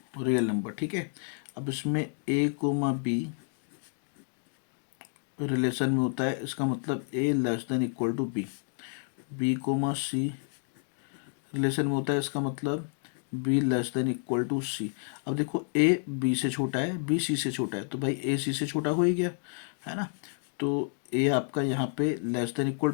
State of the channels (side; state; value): right; silent; 57 dB below the other